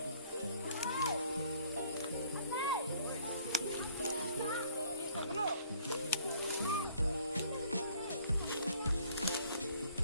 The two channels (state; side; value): inverted; both; correlation -0.58